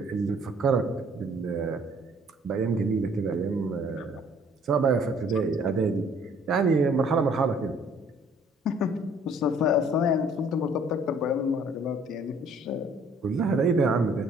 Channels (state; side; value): normal; both; correlation 0.58